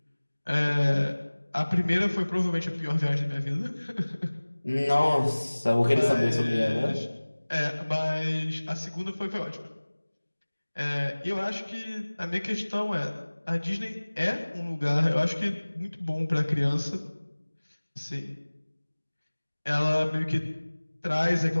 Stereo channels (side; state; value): both; inverted; correlation -1.00